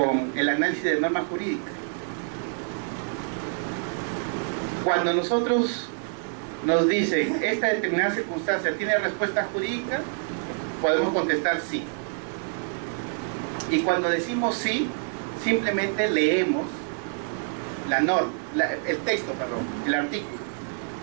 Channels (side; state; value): left; silent; 59 dB below the other